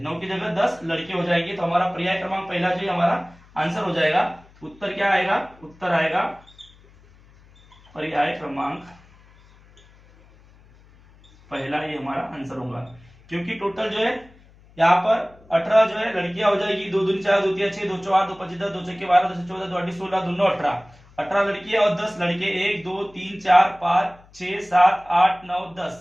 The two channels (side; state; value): left; noise; hum, 27 dB below the sound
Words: 9 की जगह 10 लड़के हो जाएंगे। तो हमारा पर्याय क्रमांक पहला जो है हमारा आंसर हो जाएगा। उत्तर क्या आएगा, उत्तर आएगा पर्याय क्रमांक पहला, ये हमारा आंसर होगा। क्योंकि टोटल जो है यहाँ पर 18 जो है लड़कियां हो जाएगी, 2 दूनी 4 2 3 6 2 4 2 5 10 2 6 12 2 14 2 8 16 2 9 18, 18 लड़कियां और 10 लड़के, 1 2 3 4 5 6 7 8 9 10।